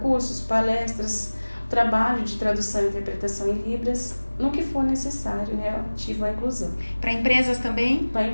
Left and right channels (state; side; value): inverted; both; correlation -1.00